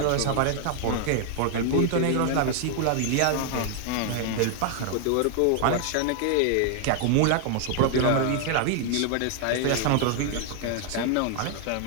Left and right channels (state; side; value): different; both; correlation 0.00